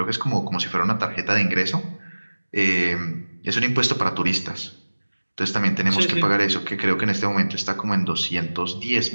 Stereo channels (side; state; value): both; inverted; correlation -1.00